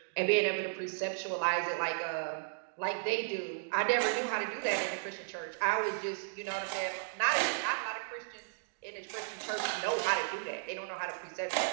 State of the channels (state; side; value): silent; left; digital silence